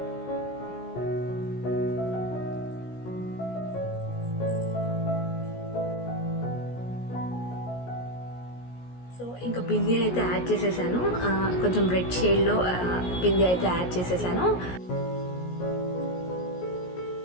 సో ఇంకా బిందీ అయితే యాడ్ చేసేసాను. కొంచెం రెడ్ షేడ్లో బిందీ అయితే యాడ్ చేసేసాను.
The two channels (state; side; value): late; right; 17 ms